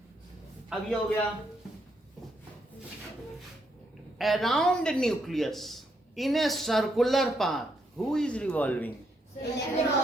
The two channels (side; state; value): both; normal; correlation 0.76